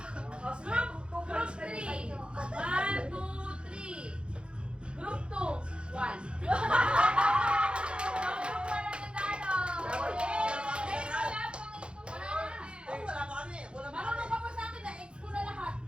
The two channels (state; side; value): late; left; 0.056 ms